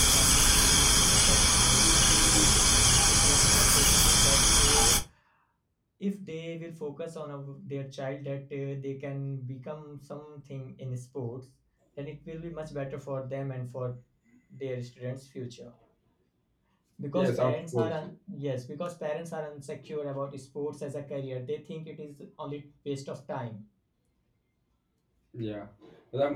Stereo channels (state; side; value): identical; both; correlation 1.00